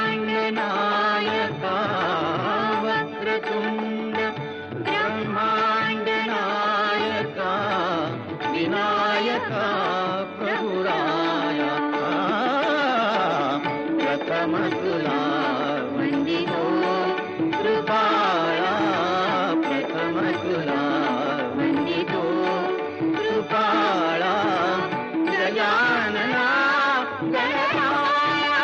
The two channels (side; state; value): both; identical; correlation 1.00